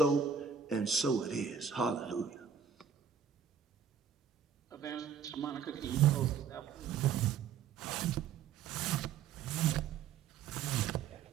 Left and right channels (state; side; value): quieter; left; 7.2 dB